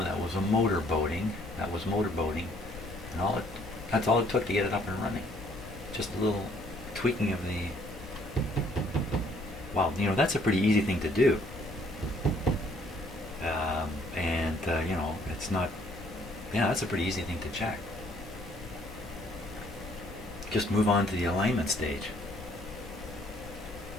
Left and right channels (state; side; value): normal; both; correlation 0.63